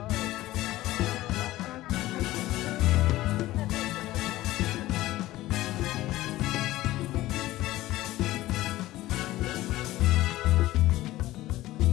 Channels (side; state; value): right; quieter; 16.5 dB